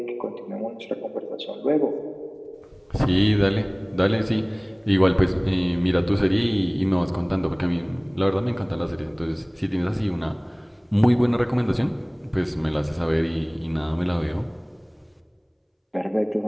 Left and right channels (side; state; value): both; identical; correlation 1.00